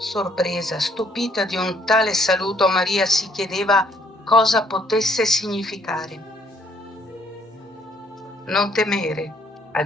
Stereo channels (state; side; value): normal; both; correlation 0.66